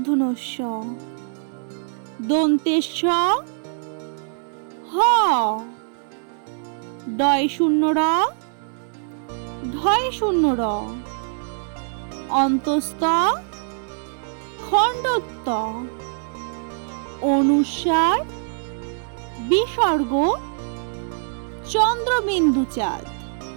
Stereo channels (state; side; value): silent; left; 61 dB below the other